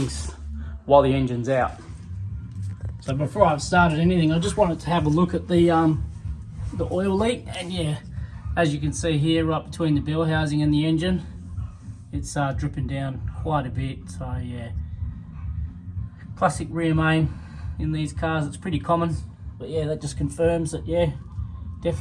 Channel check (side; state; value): both; identical; correlation 1.00